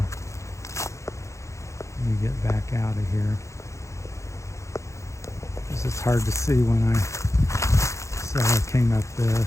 me get back out of here. Because it's hard to see when so I came up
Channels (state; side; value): late; right; 0.14 ms